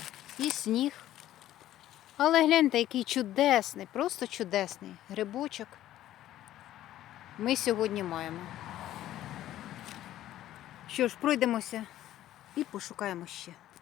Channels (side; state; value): right; quieter; 13.3 dB